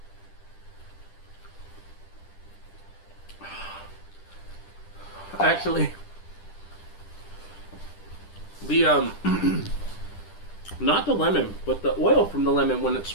Actually, the not the lemon, but the oil from the lemon when it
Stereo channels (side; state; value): right; late; 10 ms